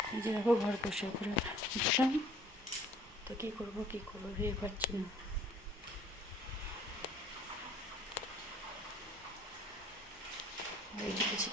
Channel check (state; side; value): normal; both; correlation 0.55